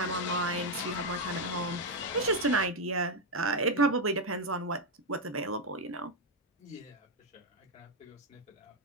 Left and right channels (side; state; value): both; normal; correlation 0.02